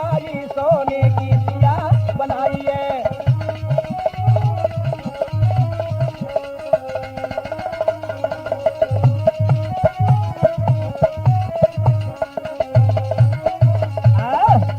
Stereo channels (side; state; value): both; identical; correlation 1.00